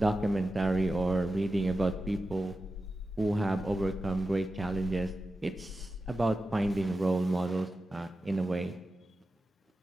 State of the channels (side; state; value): both; normal; correlation 0.92